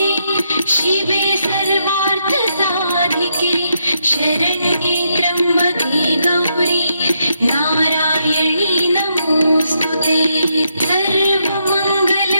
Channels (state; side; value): inverted; both; correlation -0.78